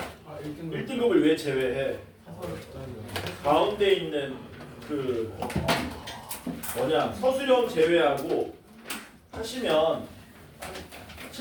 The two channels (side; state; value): both; identical; correlation 1.00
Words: 1등급. 1등급을 왜 제외해? 가운데 있는 그 서술형 제외하고 하시면